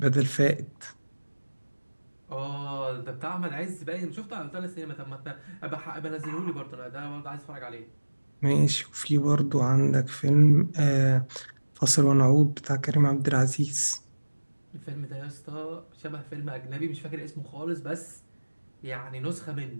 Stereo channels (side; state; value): both; inverted; correlation -1.00